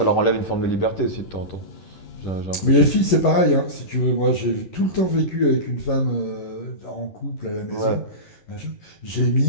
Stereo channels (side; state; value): right; late; 11 ms